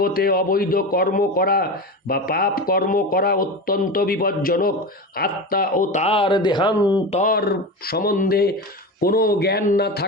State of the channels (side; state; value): both; normal; correlation 0.25